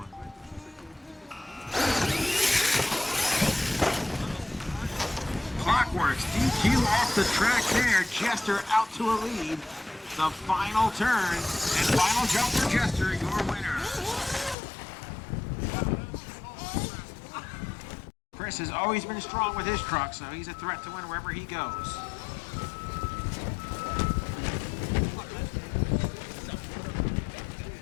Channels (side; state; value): right; drops out; at 14.6 s